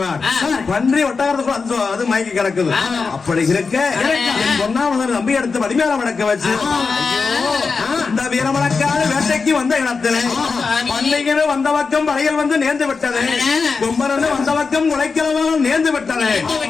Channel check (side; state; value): right; quieter; 4.8 dB